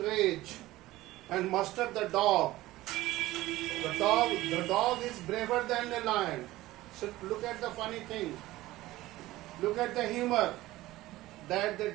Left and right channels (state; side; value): quieter; left; 17.2 dB